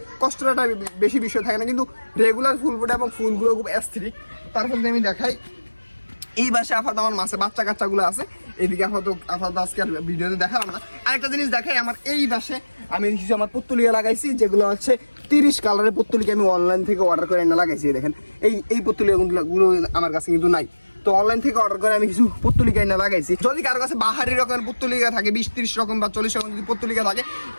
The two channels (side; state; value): both; inverted; correlation -1.00